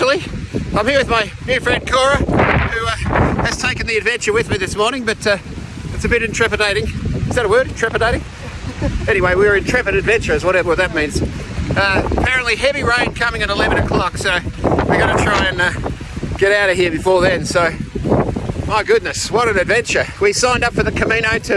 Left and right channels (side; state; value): both; identical; correlation 1.00